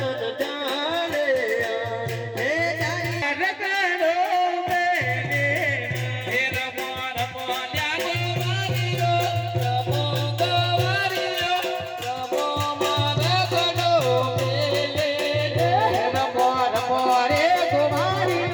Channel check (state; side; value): identical; both; correlation 1.00